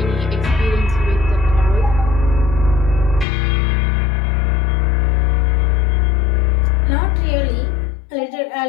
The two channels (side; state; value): right; drops out; at 3.2 s